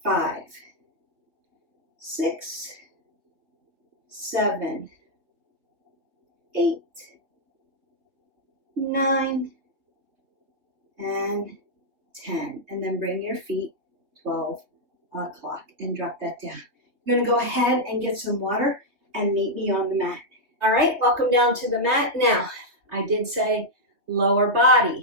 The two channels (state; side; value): late; left; 3.2 ms